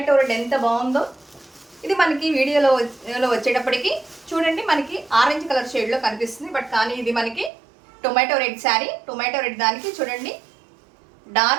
రెడ్ ఎంత బాగుందో. ఇది మనకి వీడియోలో వచ్చేటప్పటికి చూడండి మనకి ఆరెంజ్ కలర్ షేడ్లో కనిపిస్తుంది. బట్ కానీ ఇది మనకి tomato red sari. Tomato red దానికి చూడండి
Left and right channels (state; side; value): drops out; left; at 7.5 s